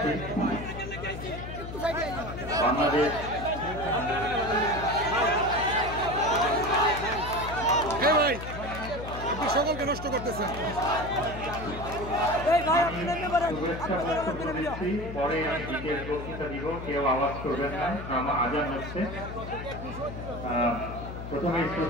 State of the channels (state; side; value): noise; left; hum, 9 dB below the sound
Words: বাংলাদেশ সকলকে নষ্ট করতেছেন। পরে আমি বিশেষ বক্তৃতা দিব, কেউ আওয়াজ করবেন না, আমার আজান হচ্ছে। প্রথমে